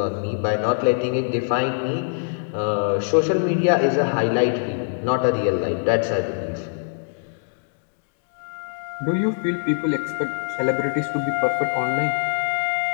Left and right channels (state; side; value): silent; right; digital silence